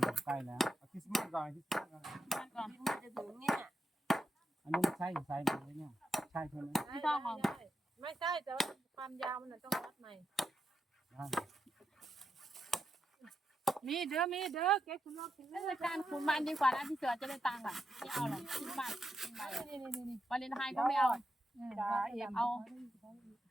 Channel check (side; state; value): both; normal; correlation 0.84